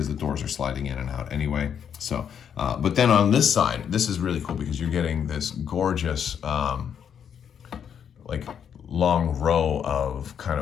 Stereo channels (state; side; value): quieter; right; 8.1 dB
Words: the doors are sliding in and out anyway. So, but then on this side, this is really cool because you're getting this gorgeous long row of kind